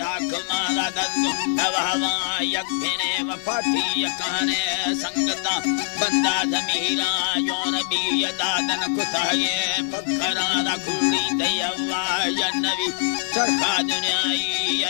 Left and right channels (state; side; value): silent; right; 63 dB below the other